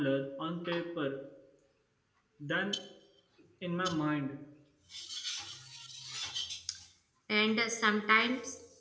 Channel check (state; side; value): identical; both; correlation 1.00